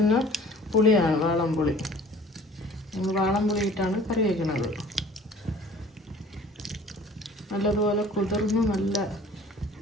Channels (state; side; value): normal; both; correlation 0.49